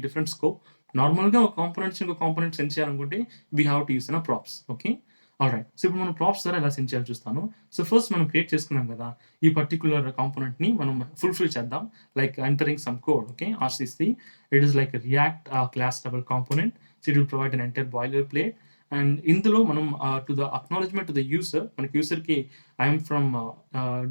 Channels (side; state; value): both; inverted; correlation -1.00